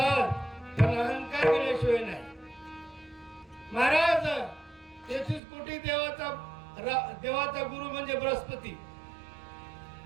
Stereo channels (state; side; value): drops out; left; at 5.4 s